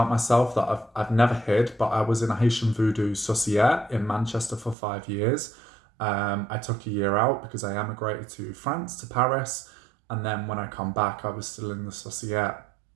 myself that I've never hid, but I was in a Haitian Voodoo Societe in Manchester for 5 years. I took a year out because I emigrated to France, to Paris. And then when I come back, I was still in the Societe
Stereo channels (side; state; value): left; drops out; at 4.8 s